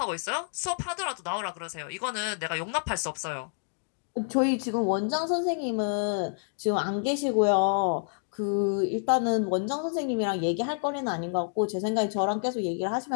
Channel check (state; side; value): silent; right; digital silence